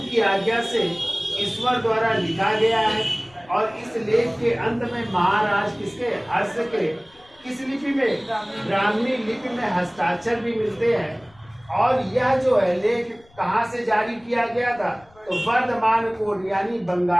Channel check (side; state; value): left; noise; rumble, 29 dB below the sound